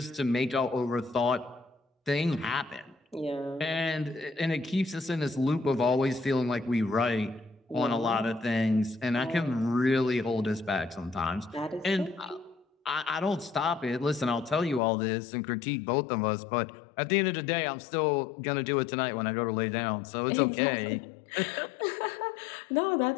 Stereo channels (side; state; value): right; drops out; at 14.8 s